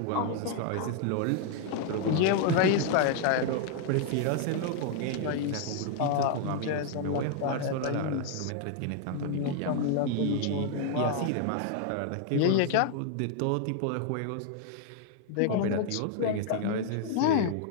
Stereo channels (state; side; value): different; both; correlation 0.00